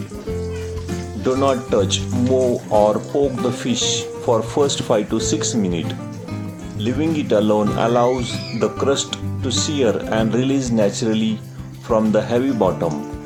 Do not touch, move or poke the fish for first 5 to 6 minutes. Leaving it alone allows the crust to sear and release naturally from the heavy bottom.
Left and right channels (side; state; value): both; identical; correlation 1.00